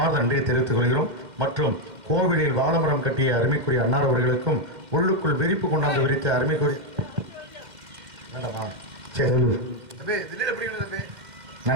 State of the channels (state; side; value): late; left; 2.1 ms